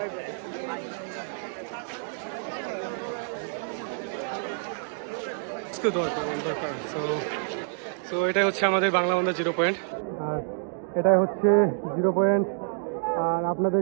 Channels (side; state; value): left; silent; digital silence